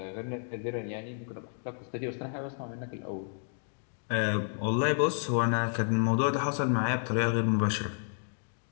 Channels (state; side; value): silent; right; digital silence